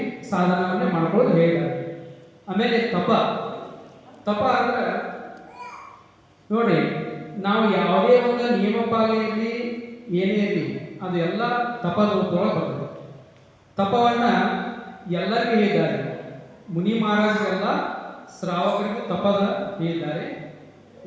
ಸಾಧನವನ್ನೇ ಮಾಡ್ಕೊಳ್ಳೋದು ಹೇಳಿದ್ದಾರೆ. ಆಮೇಲೆ ತಪ ಅಂದ್ರೆ ನೋಡಿ, ನಾವು ಯಾವುದೇ ಒಂದು ನಿಯಮಪಾಲನೆಯಲ್ಲಿ ಏನೇ ಇರಲಿ ಅದು ಎಲ್ಲ ತಪದ ರೂಪದೊಳಗೆ ಬರ್ತದೆ. ತಪವನ್ನ ಎಲ್ಲರಿಗೂ ಹೇಳಿದ್ದಾರೆ. ಮುನಿ ಮಹಾರಾಜರೆಲ್ಲ ಶ್ರಾವಕರಿಗೂ ತಪದ ಹೇಳಿದ್ದಾರೆ.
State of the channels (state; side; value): identical; both; correlation 1.00